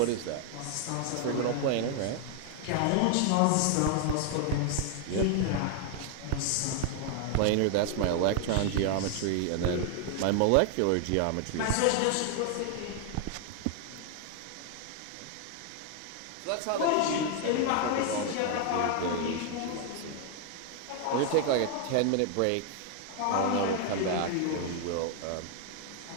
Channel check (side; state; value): both; different; correlation 0.00